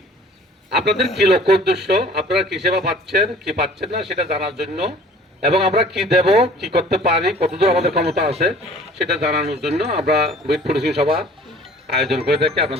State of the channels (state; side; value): normal; both; correlation 0.50